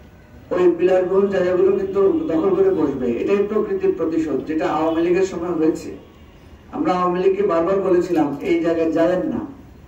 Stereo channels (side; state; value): both; identical; correlation 1.00